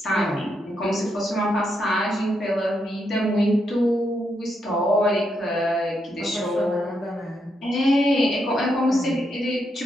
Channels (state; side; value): normal; both; correlation 0.80